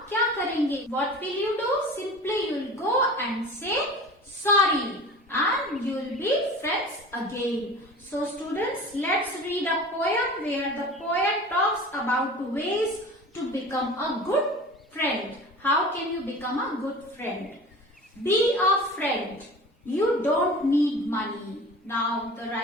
क्या करेंगे? What will you do? Simply you will go and say sorry and you will be friends again. So students, let's read a poem where the poet talks about ways to become a good friend. How can you become a good friend? Be a friend. You don't need money. Now the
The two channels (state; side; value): normal; both; correlation 0.38